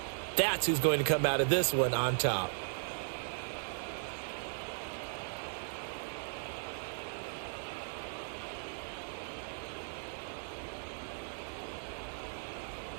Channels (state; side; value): silent; left; digital silence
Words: That's who's going to come out of this one on top.